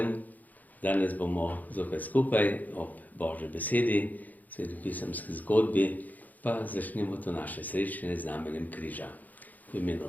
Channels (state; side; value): late; right; 0.081 ms